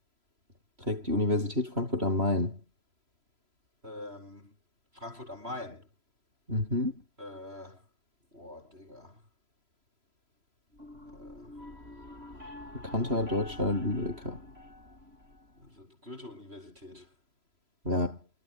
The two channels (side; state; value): left; late; 3.0 ms